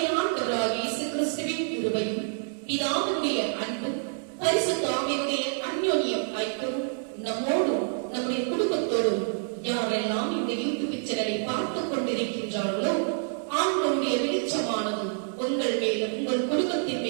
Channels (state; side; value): silent; left; 59 dB below the other